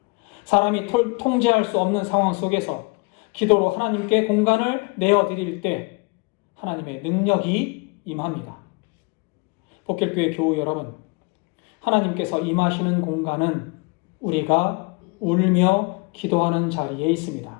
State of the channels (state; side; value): quieter; right; 29.2 dB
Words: 사람이 통제할 수 없는 상황 속에서 기도로 하나님께 공간을 내어드릴 때 하나님의 능력이 임합니다. 복길교회 교우 여러분, 하나님께서 임하시는 공간은 우리가 울며 기도하는 자리에 있습니다.